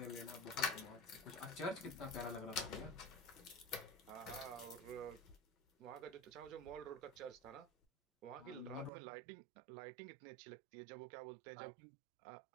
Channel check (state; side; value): drops out; left; at 8.9 s